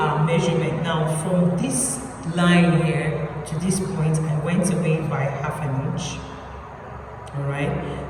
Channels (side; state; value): both; identical; correlation 1.00